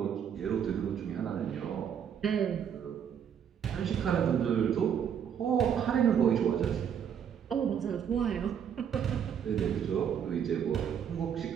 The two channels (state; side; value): quieter; left; 8.3 dB